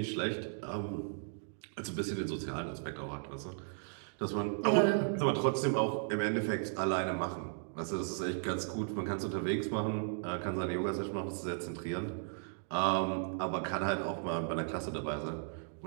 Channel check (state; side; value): silent; left; digital silence